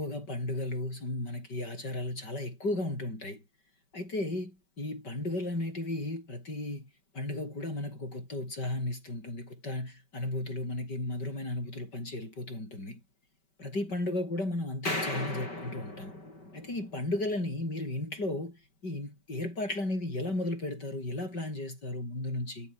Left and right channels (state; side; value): late; right; 5.2 ms